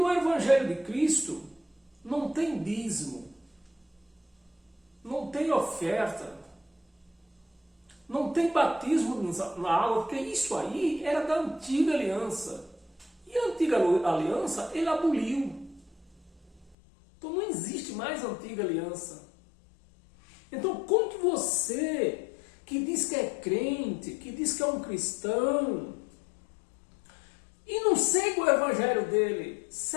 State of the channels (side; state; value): right; drops out; at 16.8 s